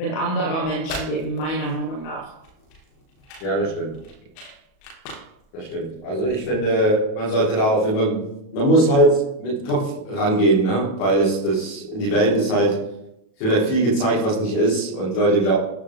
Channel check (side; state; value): right; late; 37 ms